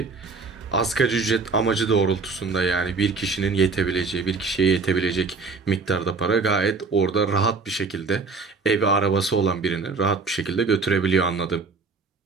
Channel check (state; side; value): quieter; left; 4.3 dB